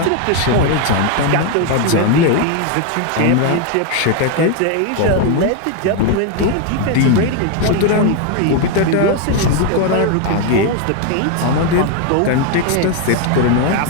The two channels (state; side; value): different; both; correlation 0.01